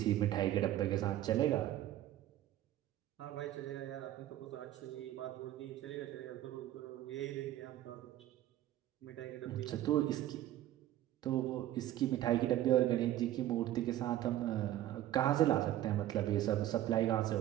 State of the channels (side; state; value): left; quieter; 13.5 dB